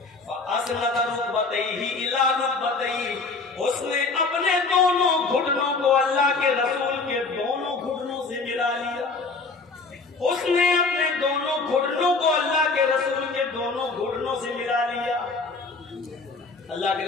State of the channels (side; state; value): right; quieter; 4.0 dB